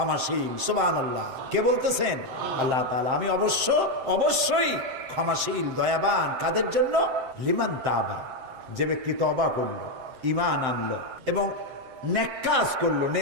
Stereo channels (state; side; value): late; left; 7.7 ms